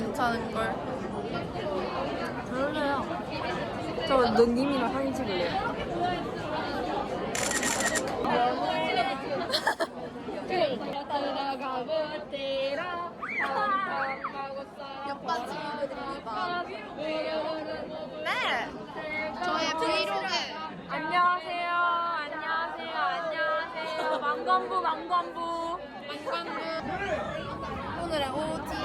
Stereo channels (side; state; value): both; identical; correlation 1.00